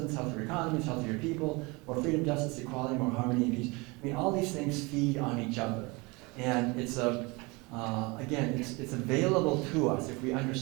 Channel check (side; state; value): left; quieter; 26.0 dB